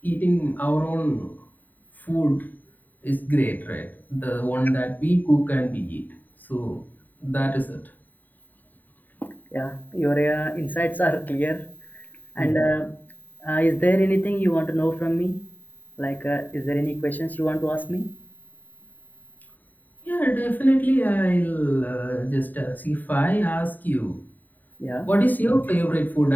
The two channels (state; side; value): late; right; 0.087 ms